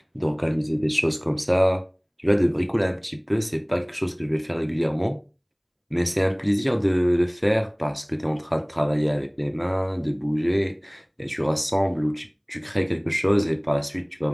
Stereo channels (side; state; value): both; identical; correlation 1.00